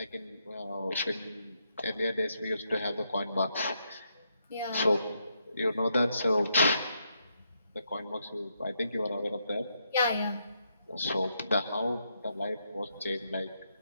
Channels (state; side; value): inverted; both; correlation -0.79